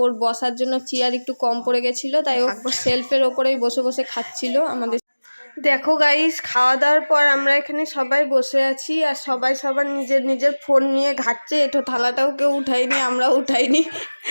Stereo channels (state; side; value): inverted; both; correlation -1.00